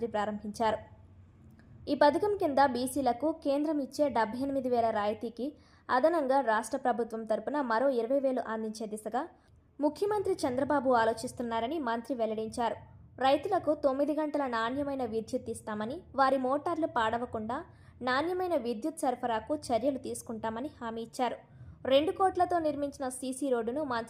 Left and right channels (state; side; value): identical; both; correlation 1.00